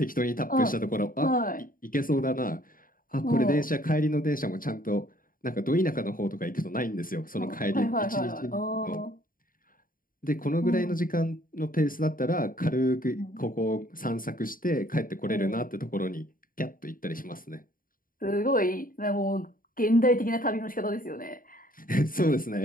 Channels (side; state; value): right; late; 0.41 ms